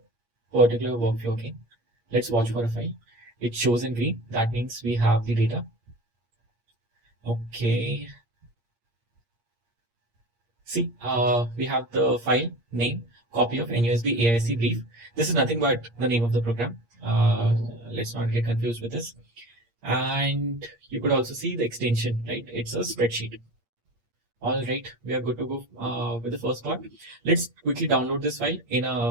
particular workflow again. Let's watch for a file. It shows in green. That means we have the data. Okay. See, we have the file name, copy of NUSB AIC brief. This is nothing but the name of the program. Let's not get confused with this. And you could also see the extension, right? It's a spreadsheet. All right, we are good to go with the first part. Let's quickly download this file in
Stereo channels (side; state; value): left; late; 8.6 ms